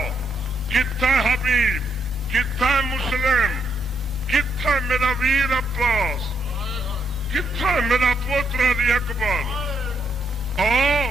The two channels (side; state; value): both; normal; correlation 0.75